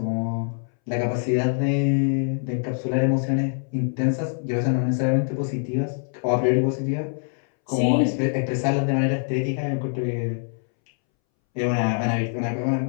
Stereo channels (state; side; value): silent; right; 63 dB below the other